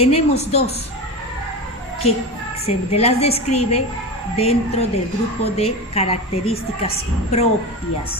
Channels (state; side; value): normal; both; correlation 0.24